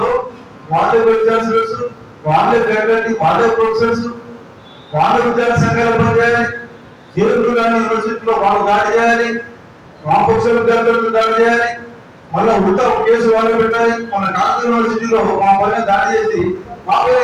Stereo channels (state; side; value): identical; both; correlation 1.00